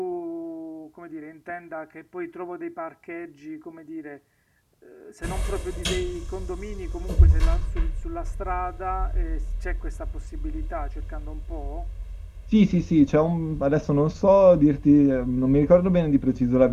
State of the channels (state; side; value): identical; both; correlation 1.00